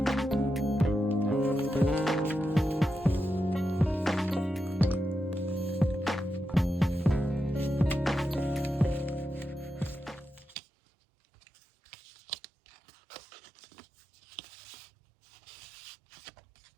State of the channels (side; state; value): left; drops out; at 10.6 s